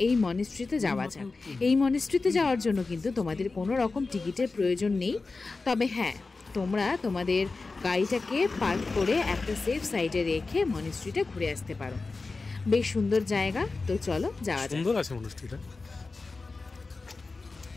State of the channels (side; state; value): right; quieter; 3.8 dB